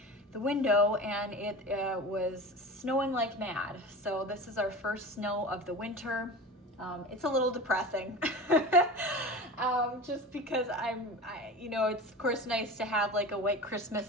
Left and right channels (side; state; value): both; normal; correlation 0.32